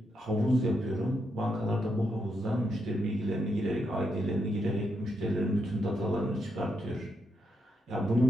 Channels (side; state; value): both; normal; correlation 0.81